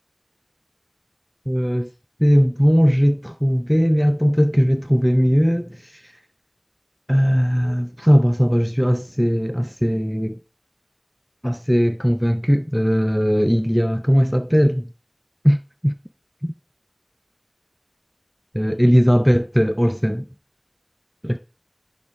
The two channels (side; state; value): both; identical; correlation 1.00